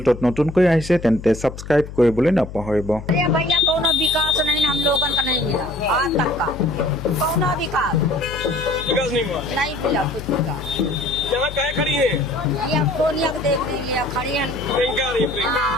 নতুনকৈ আহিছে তেন্তে সাবস্ক্ৰাইব কৰিবলৈ নাপাহৰিব। भैया कौन विकास नहीं हम लोगन का नहीं मिला आज तक का कौन विकास नहीं हुआ। नहीं मिला कुछ विकास। यहाँ काहे खड़ी है? ये सोनिया को देख लीजिए खड़ी है। प्रियंका आ रही है, प्रियंका।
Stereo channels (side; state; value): left; noise; hum, 12 dB below the sound